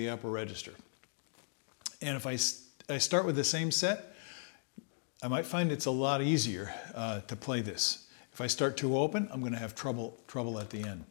upper register. And if I start with the same set, I might find it's a lot easier to play this. If I start too open, I'm going to have trouble at the end.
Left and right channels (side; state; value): right; silent; 53 dB below the other